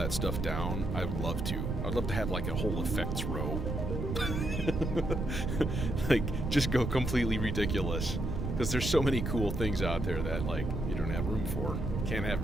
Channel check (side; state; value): right; noise; rumble, 2 dB below the sound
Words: stuff down, I would love to. I'd love to have like a whole effects row. Like, just go completely ridiculous. Because there's so many cool things out there that, like, you don't have room for. Can't have